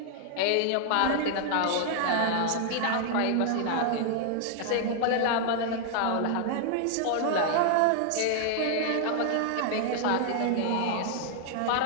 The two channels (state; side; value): different; both; correlation 0.00